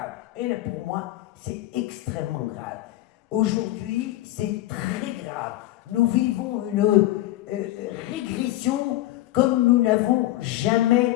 Et là, pour moi, c'est extrêmement grave. Aujourd'hui, c'est très grave. Nous vivons une régression comme nous n'avons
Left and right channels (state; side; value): quieter; right; 15.8 dB